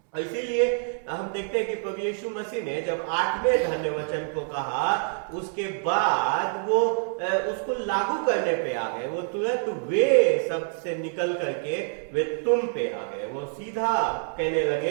इसीलिए हम देखते हैं कि प्रभु यीशु मसीह ने जब 8वें धन्य वचन को कहा, उसके बाद वो उसको लागू करने पे आ गए। वो तुरंत वे शब्द से निकल करके वे तुम पे आ गए। वो सीधा कहने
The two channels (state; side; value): silent; left; 61 dB below the other